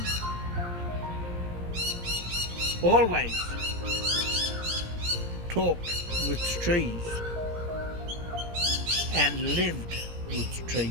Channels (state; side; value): late; left; 17 ms